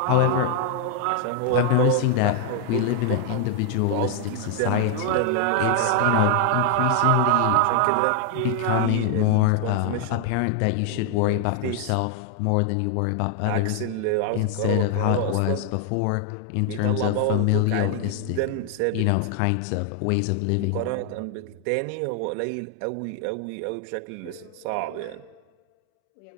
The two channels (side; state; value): both; different; correlation 0.00